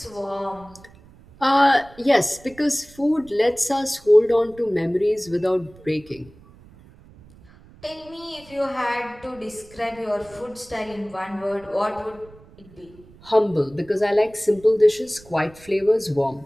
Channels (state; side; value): noise; right; rumble, 24 dB below the sound